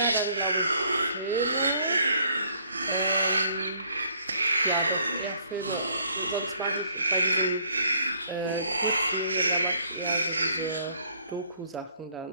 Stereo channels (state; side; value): inverted; both; correlation -0.63